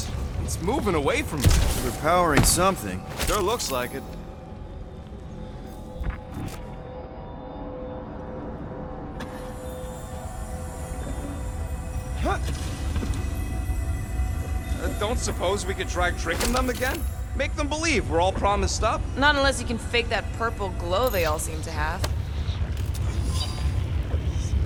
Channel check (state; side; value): identical; both; correlation 1.00